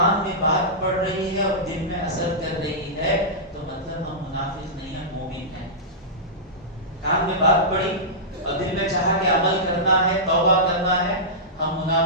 میں بات پڑ رہی ہے اور دل میں اثر کر رہی ہے تو مطلب ہم منافق نہیں ہیں, مومن ہیں. کان میں بات پڑی اور دل میں چاہا کہ عمل کرنا ہے, توبہ کرنا ہے, ہم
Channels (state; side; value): normal; both; correlation -0.15